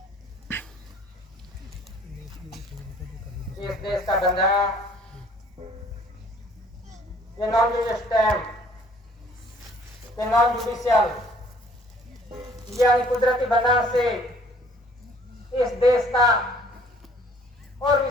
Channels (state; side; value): normal; both; correlation 0.57